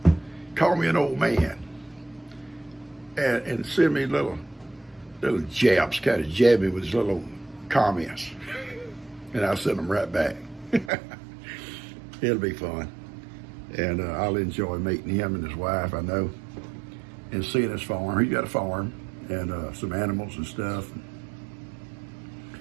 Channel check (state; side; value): drops out; left; at 10.9 s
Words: Call me an old man. And send me little jabs, kind of jab me with his little comments. And I'll send them right back. It'll be fun. And I'll enjoy meeting him and his wife, I know. And seeing his farm. He's got a farm. And some animals and stuff.